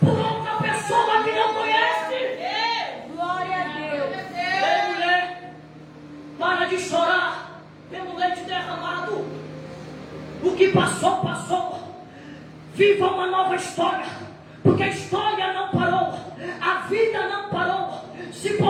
outra pessoa que não conhece. Glória a Deus. Ei, mulher, para de chorar pelo leite derramado. O que passou, passou. Viva uma nova história, porque a história não parou, a vida não parou. Se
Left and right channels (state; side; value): identical; both; correlation 1.00